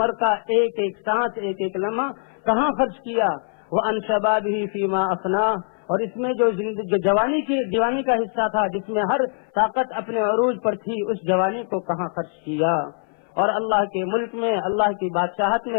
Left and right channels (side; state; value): right; silent; 57 dB below the other